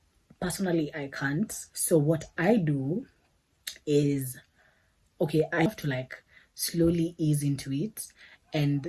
Personally, I can't. So what I do is, okay, I have to like slowly ease into it and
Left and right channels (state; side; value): identical; both; correlation 1.00